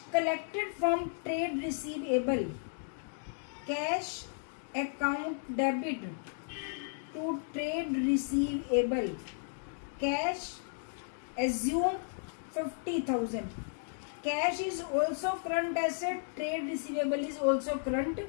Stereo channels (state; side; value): silent; right; digital silence